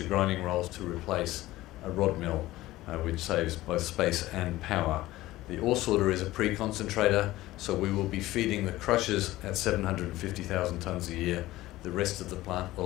grinding rolls to replace a rod mill, which saves both space and power. The ore sorter is a pre-concentrator, so we will be feeding the crushers at 750,000 tonnes a year. The rest of the plant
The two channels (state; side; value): quieter; right; 16.9 dB